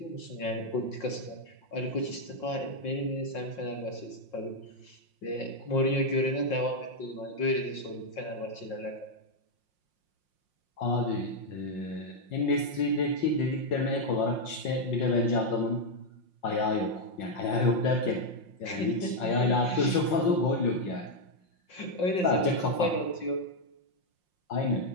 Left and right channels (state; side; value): late; right; 5.6 ms